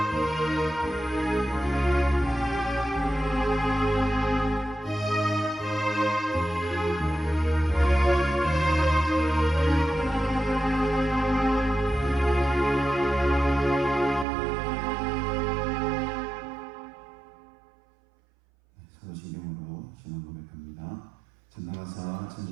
사도신경으로 신앙 고백합니다. 전능하사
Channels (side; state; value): left; drops out; at 14.2 s